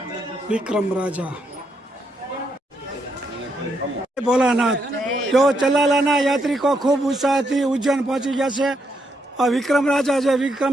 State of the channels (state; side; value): normal; both; correlation 0.78